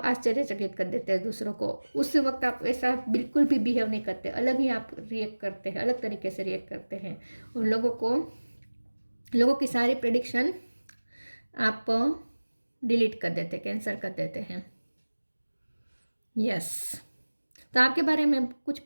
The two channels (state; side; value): inverted; both; correlation -1.00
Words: आश्चर्यचकित कर देते हैं दूसरों को। उस वक्त आप ऐसा बिल्कुल भी बिहेव नहीं करते, अलग ही आप रिएक्ट करते हैं, अलग तरीके से रिएक्ट करते हैं। और लोगों की सारी प्रेडिक्शन आप डिलीट कर देते, कैंसिल कर देते हैं। यस, तो आपके बारे में कुछ